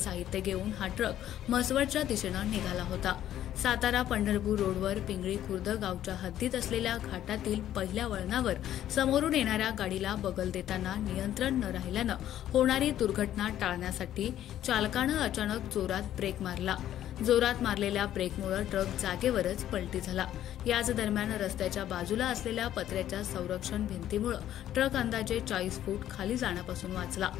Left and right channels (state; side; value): quieter; right; 11.9 dB